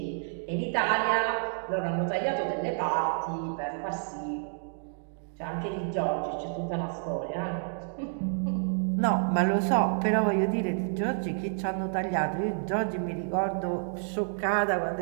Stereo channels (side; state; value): left; silent; digital silence